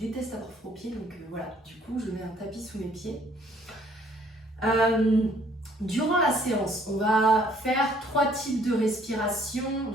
avoir froid aux pieds, donc voilà, du coup je mets un tapis sous mes pieds. Durant la séance, on va faire 3 types de respiration.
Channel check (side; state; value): both; normal; correlation 0.62